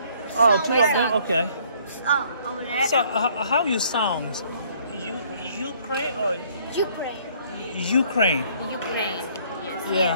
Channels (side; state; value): both; inverted; correlation -0.61